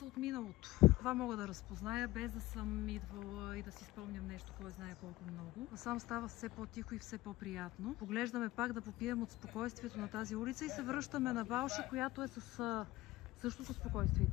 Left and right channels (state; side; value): quieter; right; 18.2 dB